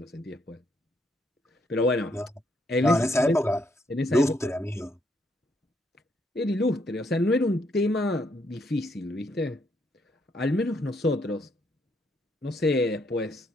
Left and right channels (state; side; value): normal; both; correlation 0.73